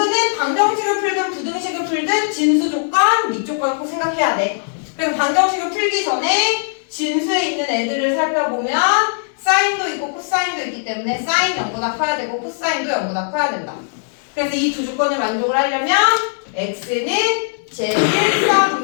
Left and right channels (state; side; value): silent; right; digital silence